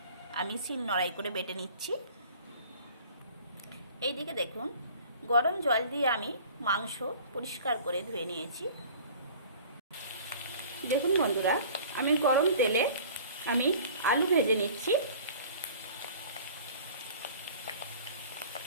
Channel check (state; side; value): inverted; both; correlation -0.46